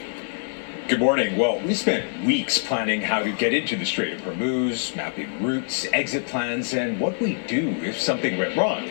Good morning. Well, we spent weeks planning how to get into the Strait of Hormuz, mapping routes, exit plans, and what we do if something went wrong.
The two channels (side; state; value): right; silent; 58 dB below the other